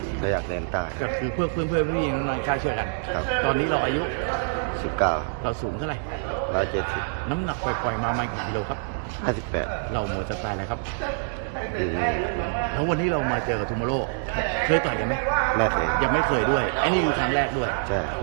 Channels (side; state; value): left; silent; 61 dB below the other